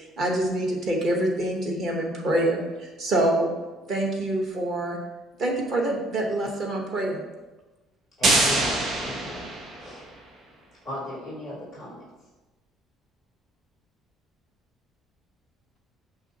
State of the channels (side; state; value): both; normal; correlation 0.62